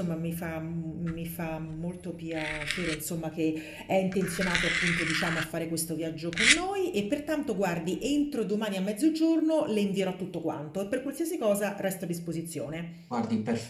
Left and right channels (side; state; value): both; identical; correlation 1.00